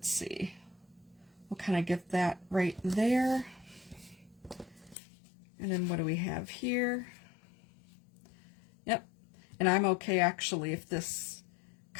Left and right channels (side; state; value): right; drops out; at 5.0 s